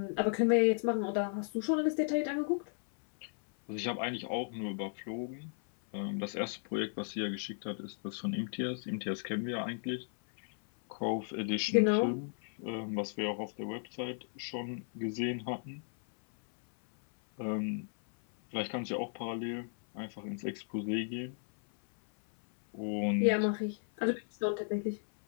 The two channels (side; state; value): right; silent; 55 dB below the other